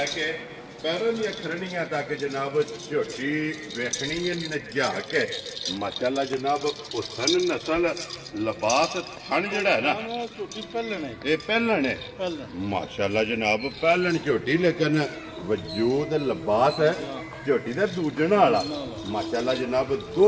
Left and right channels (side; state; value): both; identical; correlation 1.00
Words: ਕੇ ਪੈਰਾਂ ਦੀਆਂ ਖਰਣੀਆਂ ਤੱਕ ਜਨਾਬ ਝੋਟੀ ਵੇਖਣੀ ਹੈ ਨਜਾ ਕੇ ਮਾਸ਼ਾਅੱਲਾ ਜਨਾਬ ਹੁਸਨ ਨਸਲ ਲਿਬਾਸ ਥਣ ਜਿਹੜਾ ਹੈ ਨਾ ਝੋਟੀ ਪਹਿਲਣ ਹੈ ਇਹ ਪਹਿਲਣ ਹੈ ਮਾਸ਼ਾਅੱਲਾ ਜਨਾਬ ਪਹਿਲਣ ਝੋਟੀ ਲੇਕਿਨ ਵਜੂਦ ਲਿਬਾਸ ਹੈ ਝੋਟੀ ਦਾ ਦੂਜਣ ਵਾਲਾ ਮਾਸ਼ਾਅੱਲਾ ਜਨਾਬ